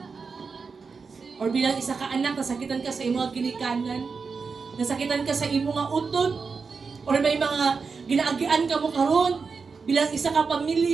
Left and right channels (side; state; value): left; quieter; 5.0 dB